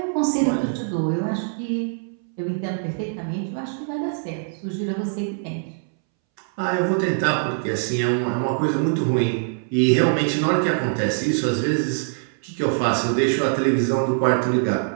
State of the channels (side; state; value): left; silent; 63 dB below the other